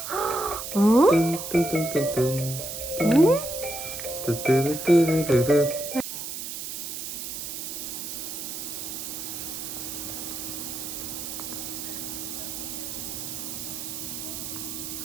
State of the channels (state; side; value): noise; right; hiss, 6 dB below the sound